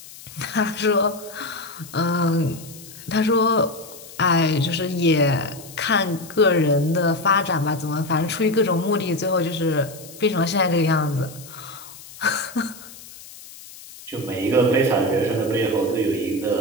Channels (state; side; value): noise; left; hiss, 17 dB below the sound